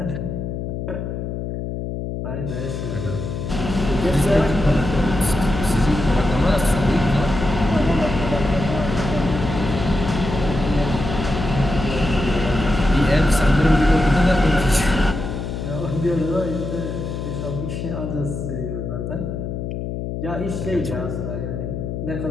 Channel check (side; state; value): left; noise; hum, 5 dB below the sound